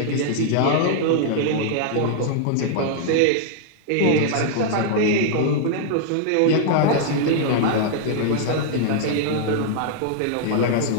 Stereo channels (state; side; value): different; both; correlation -0.01